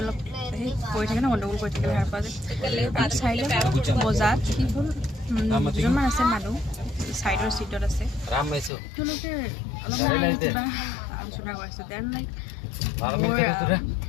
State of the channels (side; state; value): right; drops out; at 8.7 s